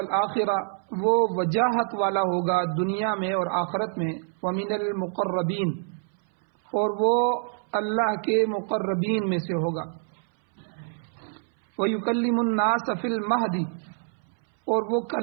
وہ وجاہت والا ہوگا دنیا میں اور آخرت میں ومن المقربین اور وہ اللہ کے مقربین میں سے ہوگا ویکلم الناس فی المہدی اور وہ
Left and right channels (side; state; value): left; silent; 61 dB below the other